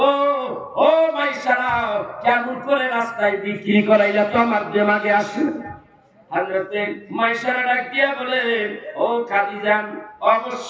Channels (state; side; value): identical; both; correlation 1.00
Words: ও মাইসারা কেমন করে রাস্তায় বিক্রি করাইলা তো আমার দিমাগে আসে। হযরতে মাইসারা ডাক দিয়া বলে, ও খাদিজা,